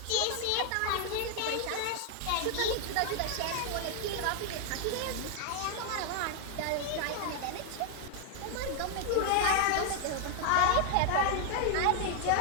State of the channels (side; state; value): both; different; correlation 0.00